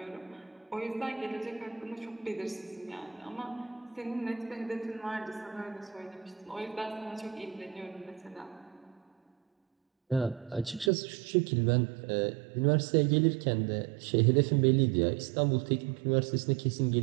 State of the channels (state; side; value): drops out; left; at 10.9 s